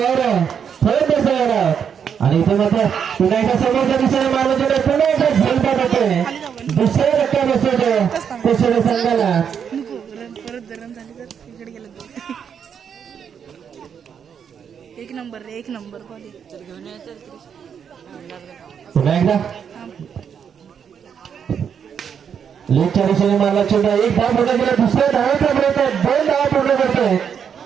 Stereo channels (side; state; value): left; quieter; 7.6 dB